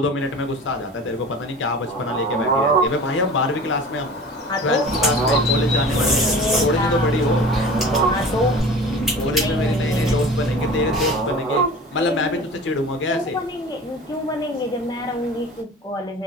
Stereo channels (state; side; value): normal; both; correlation 0.39